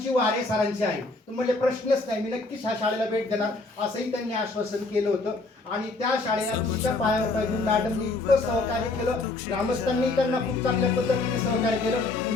वारे सरांची आहे. तर म्हणले प्रश्नच नाही, मी नक्कीच ह्या शाळेला भेट देणार असंही त्यांनी आश्वासन केलं होतं. आणि त्या शाळेला तुमच्या पायावर पाय घेऊन मॅडमनी इतकं सहकार्य केलं. ग्रामस्थांनी त्यांना खूप चांगल्या पद्धतीने सहकार्य केलं.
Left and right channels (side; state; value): right; quieter; 3.4 dB